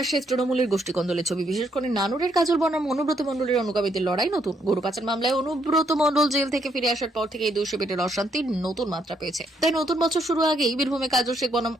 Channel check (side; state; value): both; normal; correlation 0.73